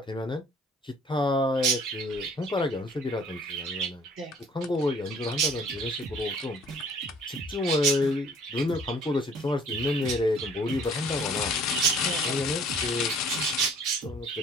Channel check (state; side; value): normal; both; correlation 0.54